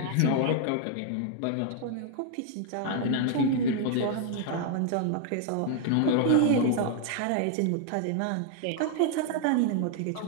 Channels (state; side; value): different; both; correlation 0.00